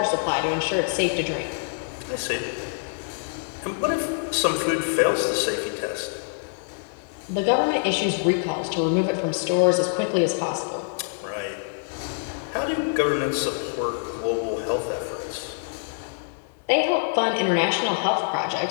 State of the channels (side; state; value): right; silent; digital silence